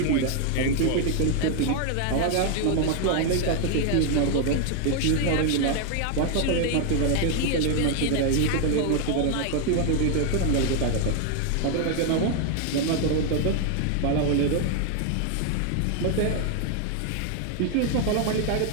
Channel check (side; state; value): both; different; correlation 0.01